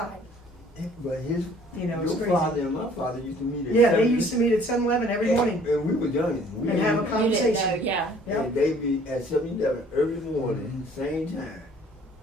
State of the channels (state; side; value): normal; both; correlation 0.56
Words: but his You know, it's your crazy. father and my father used to meet at Yeah, they 7. used to meet at 7-Eleven every morning And we were young. We and have a You didn't know, conversation. yeah. Yeah. And they be at 7-Eleven every morning, same time,